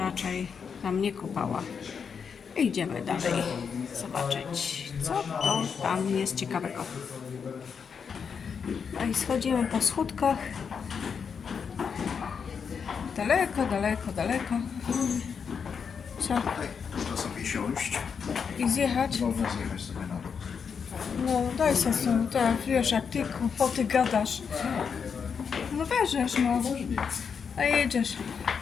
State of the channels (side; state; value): right; quieter; 6.4 dB